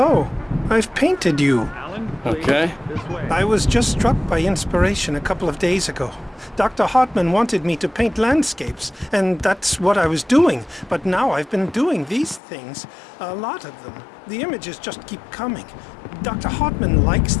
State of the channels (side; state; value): right; drops out; at 12.4 s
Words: I've painted you. Okay. I was just struck by inspiration a couple of days ago. Dr. Hartman wanted me to paint landscapes, and that's what I was doing. But now I've been doing these things, a lot of them. The images just keep coming. Dr. Hartman likes